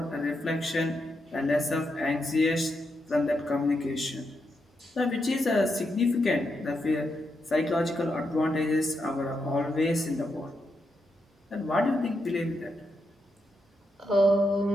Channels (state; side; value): normal; both; correlation 0.83